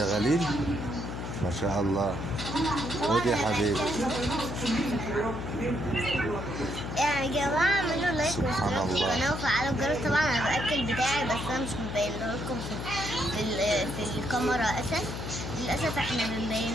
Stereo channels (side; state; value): left; noise; hum, 6 dB below the sound